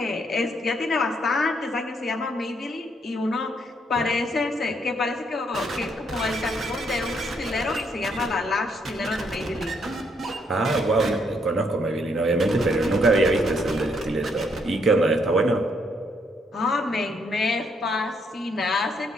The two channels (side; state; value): both; normal; correlation 0.73